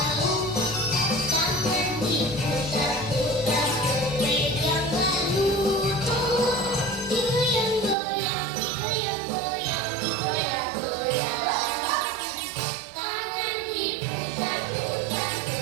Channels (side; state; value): left; drops out; at 8.0 s